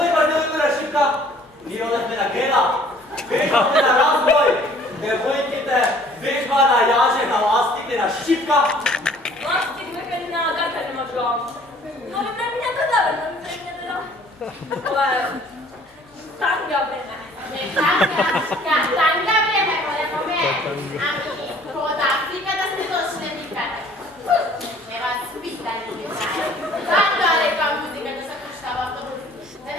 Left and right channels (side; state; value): both; normal; correlation 0.55